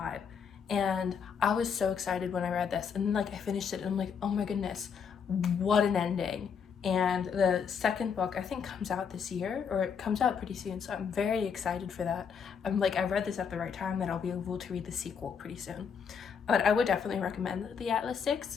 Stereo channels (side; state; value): right; quieter; 6.7 dB